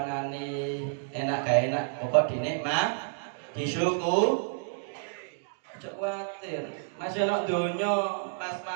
anane enak gak enak pokok dinikmat disyukur. Aja kuwatir, masih ana donya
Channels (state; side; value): silent; left; digital silence